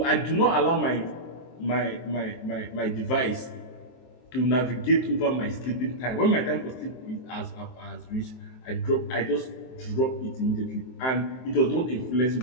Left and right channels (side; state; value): right; late; 23 ms